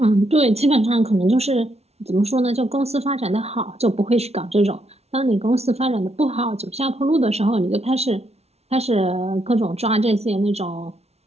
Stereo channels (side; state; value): left; late; 0.31 ms